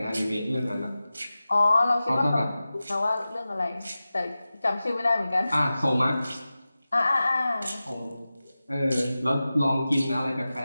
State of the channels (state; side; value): inverted; both; correlation -0.95